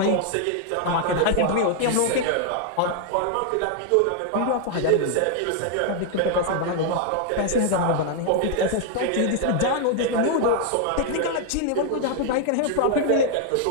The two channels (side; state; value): both; different; correlation 0.00